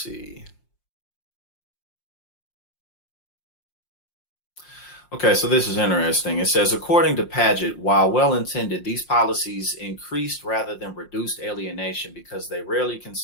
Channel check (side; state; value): right; late; 5.6 ms